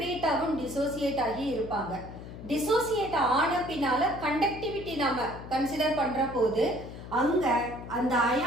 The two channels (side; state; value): left; noise; hum, 13 dB below the sound